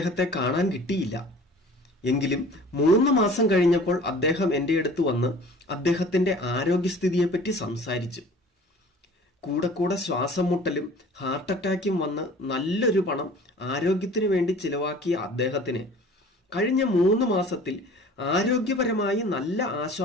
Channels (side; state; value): both; normal; correlation 0.46